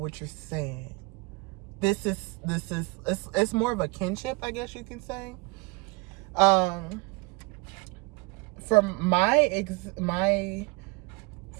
you're saying. It's more of a kinship, I guess you can say. From my experience,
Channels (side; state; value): left; quieter; 27.5 dB